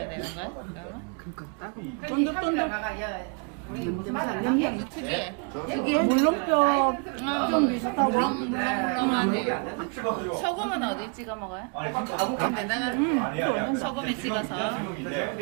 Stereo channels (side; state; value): left; quieter; 36.2 dB